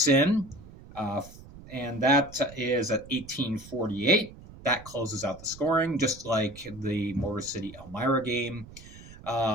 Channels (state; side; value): noise; right; rumble, 18 dB below the sound